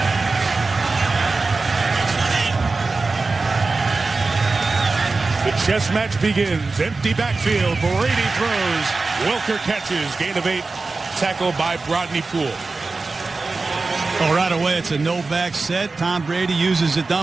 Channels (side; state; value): left; quieter; 3.8 dB